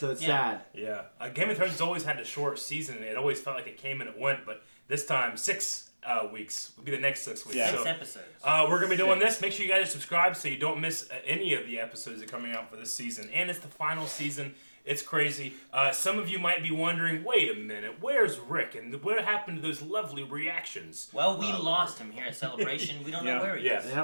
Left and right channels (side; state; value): both; inverted; correlation -1.00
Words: it's sad. Yeah. Game of Thrones has always had a short season. It always felt like it came and it went, but this time, 6 weeks will be the next 6 weeks. Yeah. So, 6 episodes. we're going to be doing this. Make sure you guys subscribe so you don't miss any of the episodes that are coming out for this season. And it's the final season. It's crazy. Some of you might be wondering, wait a minute, where's Rick? And what happened to those lovely reactions? Well, we lost him here at Celebration. We don't know where he is.